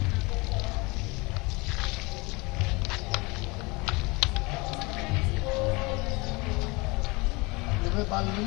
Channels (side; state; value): right; quieter; 25.9 dB